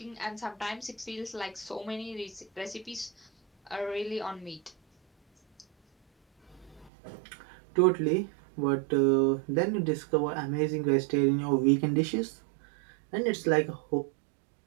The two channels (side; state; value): left; drops out; at 6.9 s